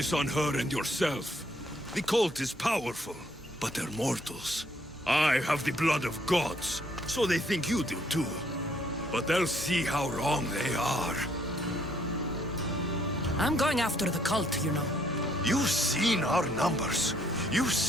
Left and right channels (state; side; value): normal; both; correlation 0.67